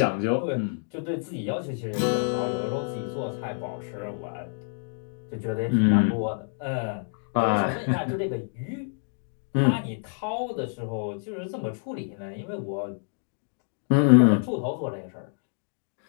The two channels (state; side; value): silent; right; digital silence